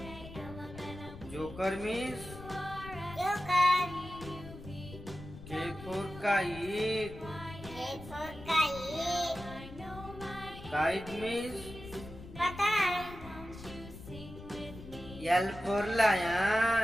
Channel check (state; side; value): noise; left; rumble, 14 dB below the sound